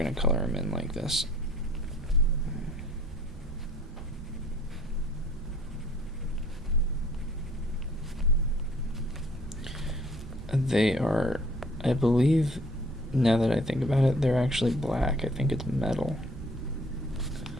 to color them in like this. They are, I believe, now that I think about it, they're actually black. I think it's metal.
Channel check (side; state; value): both; normal; correlation 0.56